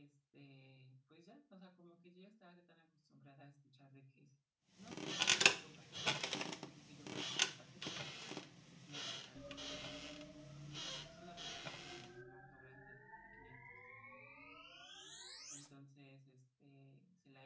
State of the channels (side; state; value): both; identical; correlation 1.00